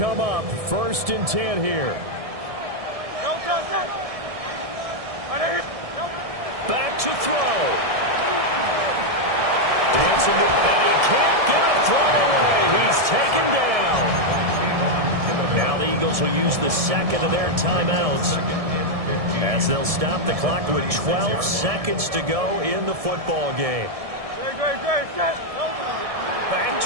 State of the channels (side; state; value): left; late; 1.7 ms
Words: up first and 10 here. Back to throw. Dancing to, and he can't get a throw away. He's taken down. Now the Eagles will use the second of their timeouts as they'll stop the clock with 12 seconds to go in the football game. Back